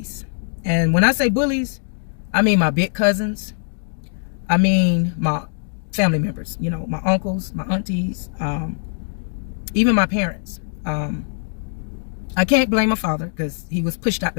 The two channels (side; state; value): right; silent; digital silence